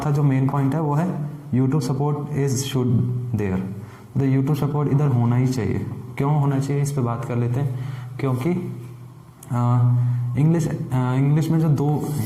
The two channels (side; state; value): both; identical; correlation 1.00